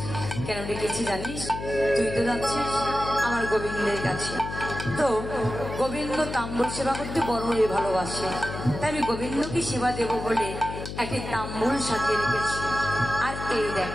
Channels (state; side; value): noise; left; hum, 8 dB below the sound